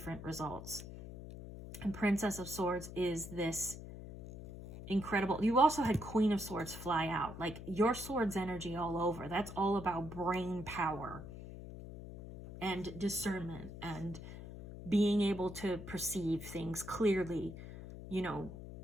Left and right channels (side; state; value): left; noise; hum, 11 dB below the sound